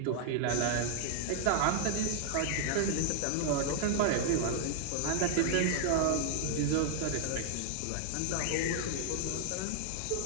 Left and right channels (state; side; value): different; both; correlation 0.00